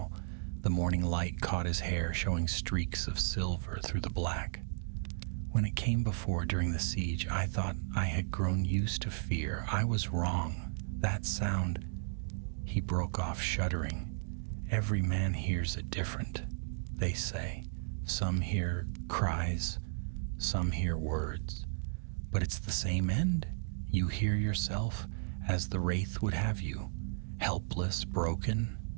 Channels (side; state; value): left; silent; digital silence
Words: The morning light caught his hair, showing streaks of silver through the black. When it came before during the siege, I thought I had grown used to fear. I was wrong. That sound... He broke off, shuddering. Every man hears it different, they say. Some hear cries, some hear words. But it's the same end. You hear yourself as the wraith would have you, helpless, broken.